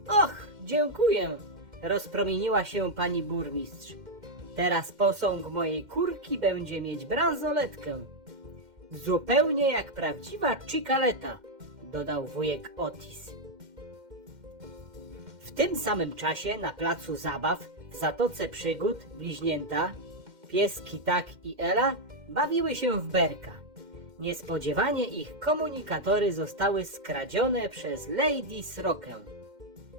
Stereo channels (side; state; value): left; late; 2.1 ms